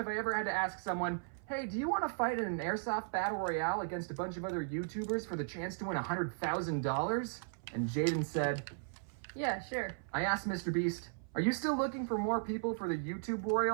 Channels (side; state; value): left; silent; 54 dB below the other